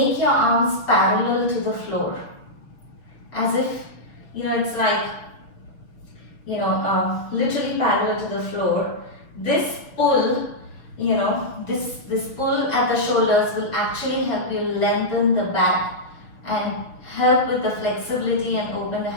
your arms parallel to the floor. As if, it's like, literally parallel to the floor. This pull, this pull at the shoulders will actually help you lengthen the back and help with the flexibility and open the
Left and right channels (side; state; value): right; late; 6.3 ms